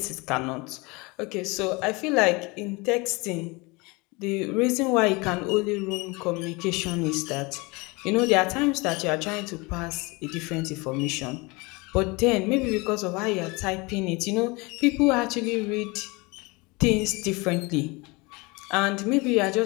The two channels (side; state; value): right; quieter; 26.0 dB